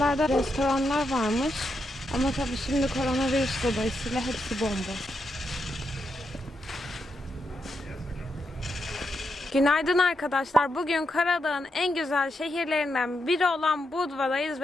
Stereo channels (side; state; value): both; normal; correlation 0.83